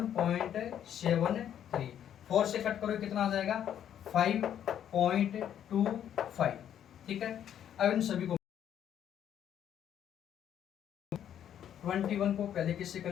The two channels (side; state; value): right; quieter; 9.9 dB